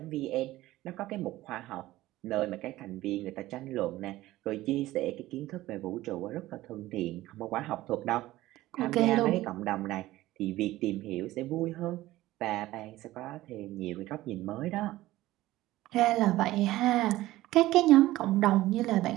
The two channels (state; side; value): quieter; left; 16.5 dB